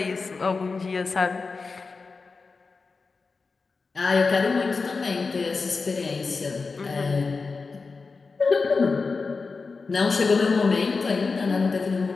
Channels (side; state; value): right; quieter; 4.4 dB